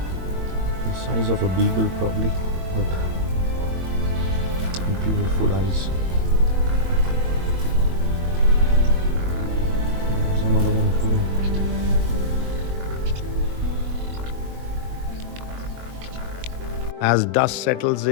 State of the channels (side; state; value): left; late; 22 ms